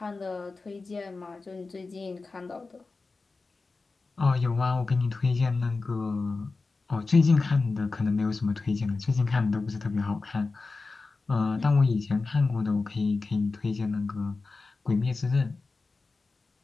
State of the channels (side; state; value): right; quieter; 3.9 dB